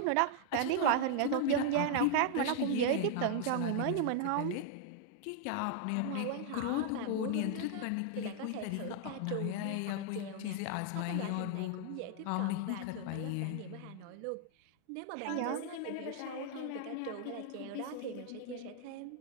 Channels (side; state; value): both; different; correlation 0.00